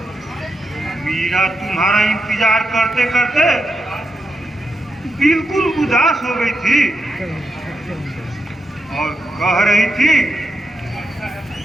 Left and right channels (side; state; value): both; normal; correlation 0.86